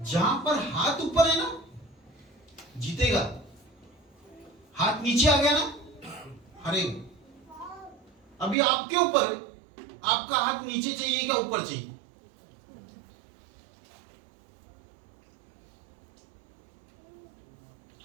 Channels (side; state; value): left; drops out; at 8.6 s